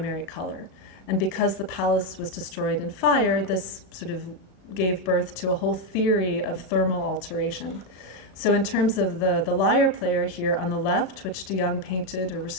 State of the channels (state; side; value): late; right; 36 ms